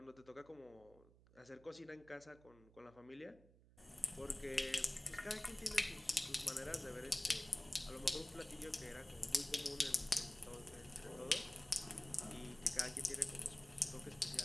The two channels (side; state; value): right; noise; hum, 25 dB below the sound